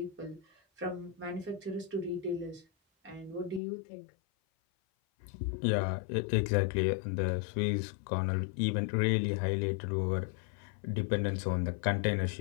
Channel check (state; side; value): drops out; right; at 3.6 s